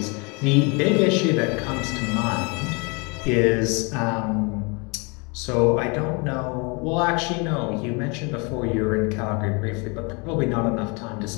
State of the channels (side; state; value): right; quieter; 30.9 dB